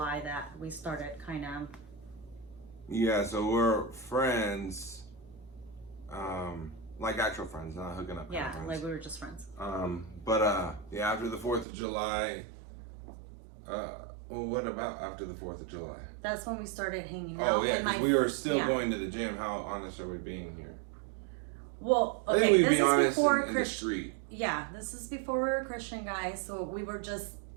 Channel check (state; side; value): drops out; left; at 11.7 s